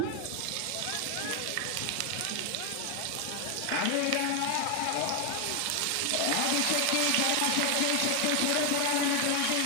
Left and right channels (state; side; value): different; both; correlation 0.01